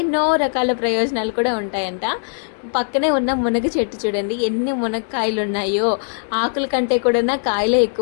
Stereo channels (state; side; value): silent; right; digital silence